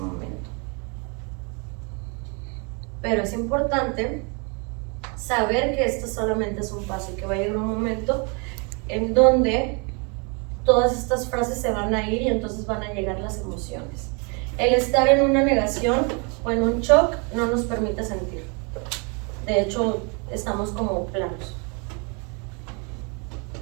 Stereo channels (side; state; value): left; quieter; 34.1 dB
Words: Pero es importante saber que esto solamente es un paso y que va a llegar un momento en donde todas estas frases se van a ir y entonces van a llegar las emociones. El estar en una negación o en un shock no nos permite sentir. De hecho, estamos como planos.